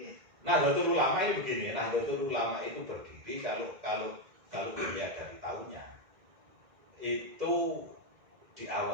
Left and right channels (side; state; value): left; late; 2.0 ms